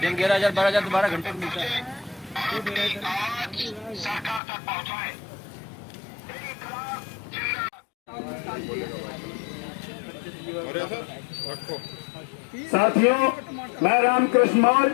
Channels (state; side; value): drops out; right; at 4.4 s